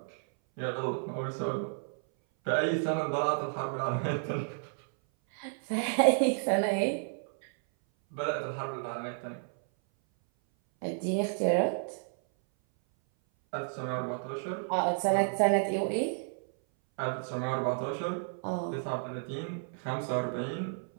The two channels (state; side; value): silent; left; 57 dB below the other